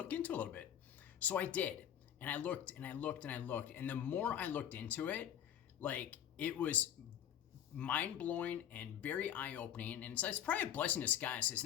into it a little bit. So I did, and I looked and I looked and I looked, and the more I looked into it, like it was mind-blowing and very eye-opening, and so it's probably a blessing in disguise because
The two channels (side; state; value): right; quieter; 10.1 dB